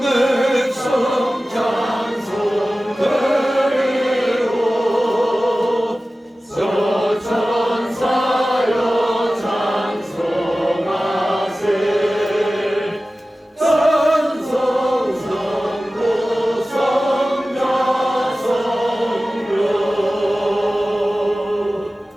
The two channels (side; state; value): both; normal; correlation 0.96